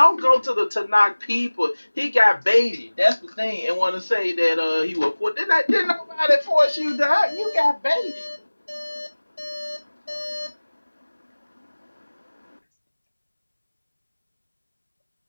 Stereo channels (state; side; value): inverted; both; correlation -1.00